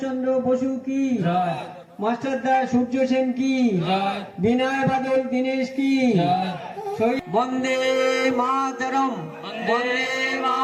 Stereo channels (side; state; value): both; identical; correlation 1.00